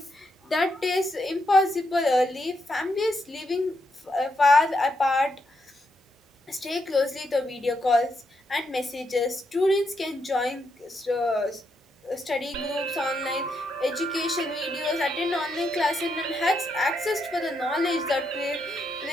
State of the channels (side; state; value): both; normal; correlation 0.80